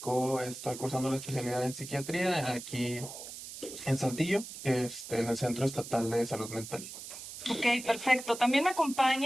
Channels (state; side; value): noise; right; hiss, 11 dB below the sound